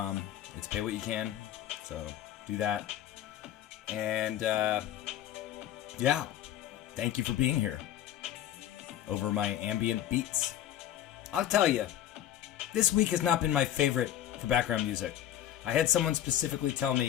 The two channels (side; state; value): right; quieter; 11.9 dB